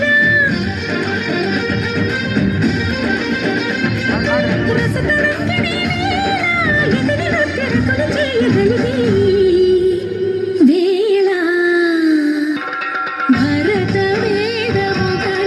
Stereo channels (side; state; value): both; identical; correlation 1.00